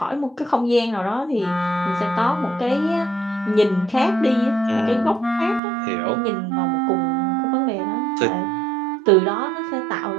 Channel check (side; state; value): left; drops out; at 5.6 s